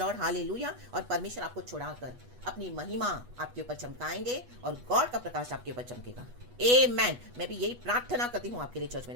hallelujah. और परमेश्वर आपको छुड़ाकर अपनी महिमा आपके ऊपर चमकाएंगे और गॉड का प्रकाश आपके ऊपर चमकेगा। आमेन। मैं भी यही प्रार्थना करती हूँ आपके लिए चर्च,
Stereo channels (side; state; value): left; late; 8.2 ms